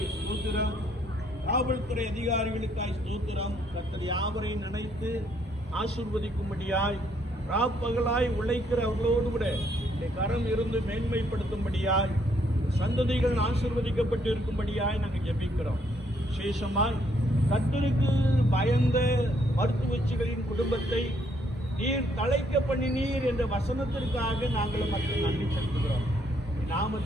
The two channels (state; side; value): normal; both; correlation 0.70